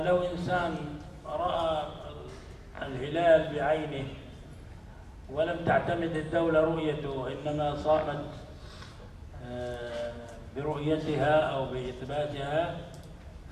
إنسان رأى الهلال بعينه ولم تعتمد الدولة رؤيته، إنما صامت برؤيتها أو بإثباتها،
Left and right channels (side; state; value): both; identical; correlation 1.00